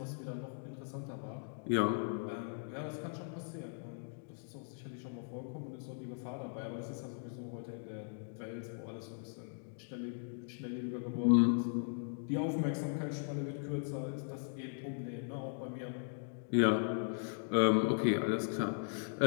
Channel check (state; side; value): silent; right; digital silence